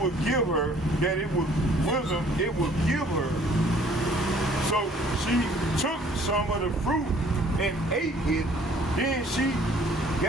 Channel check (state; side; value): normal; both; correlation 0.57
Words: would give her, that it was wisdom, it would give her. So she took some of the fruit and ate it. Then she